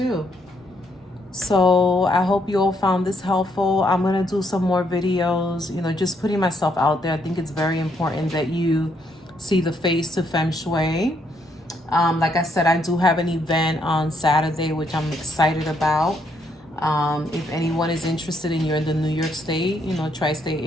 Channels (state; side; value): normal; both; correlation 0.73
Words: So I hope you all found this helpful. I'm gonna do some more videos, you know, just putting myself out there. I think it's very important that you see the face to feng shui. Like I said, I do have an event on Saturday, which I'm excited about. If anyone is interested and you're in the New York State, you know, tri-state